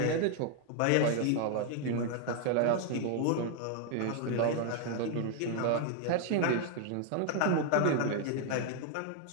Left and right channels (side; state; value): both; different; correlation 0.00